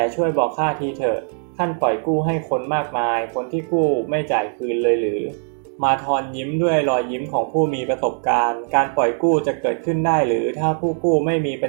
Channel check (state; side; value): silent; left; 55 dB below the other